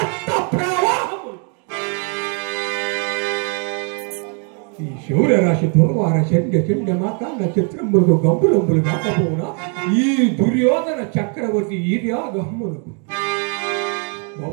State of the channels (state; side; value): quieter; left; 39.6 dB